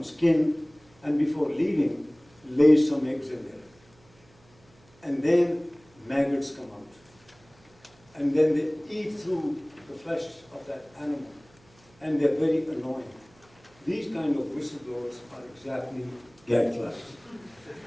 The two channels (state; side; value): noise; right; hum, 30 dB below the sound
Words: skin, and before leaving, lays some eggs in there. And then maggots come out. And then they eat through the flesh of that animal. And they're very annoying. These kind of whistleblowers are exactly gadflies.